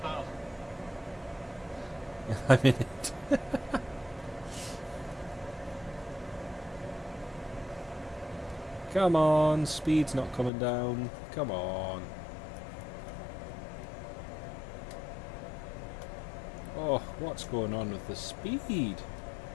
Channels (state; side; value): drops out; right; at 10.5 s